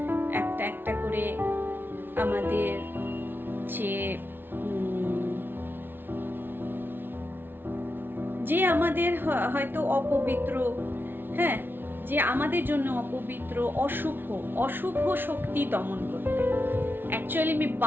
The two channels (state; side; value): late; left; 0.10 ms